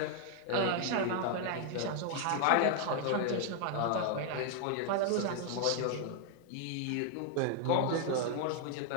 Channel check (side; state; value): both; different; correlation 0.00